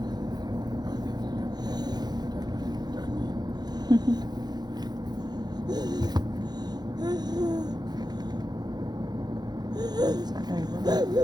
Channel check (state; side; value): late; left; 0.20 ms